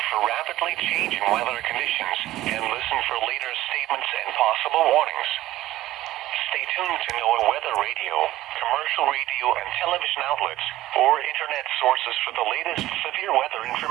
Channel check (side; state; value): left; quieter; 15.3 dB